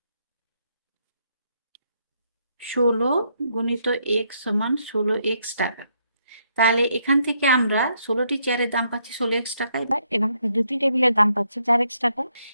16 গুণিত x সমান 16x টাকা। তাহলে এখান থেকে আমরা 16টি চেয়ারের দাম পাচ্ছি 16x টাকায়, এবং 2টি টেবিলের দাম পাচ্ছি 4x টাকা।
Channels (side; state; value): both; inverted; correlation -0.74